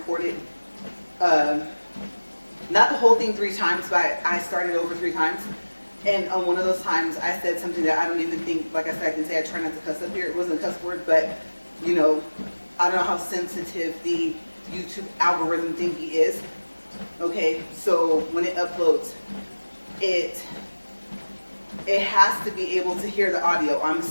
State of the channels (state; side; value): inverted; both; correlation -1.00